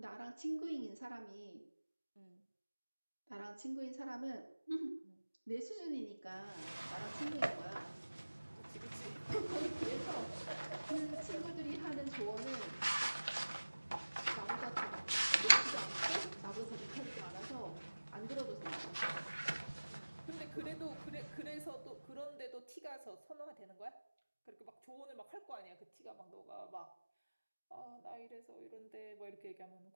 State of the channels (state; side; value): inverted; both; correlation -1.00